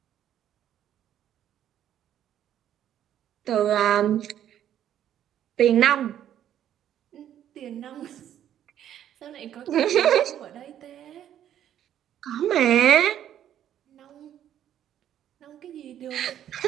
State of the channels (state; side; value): quieter; left; 10.7 dB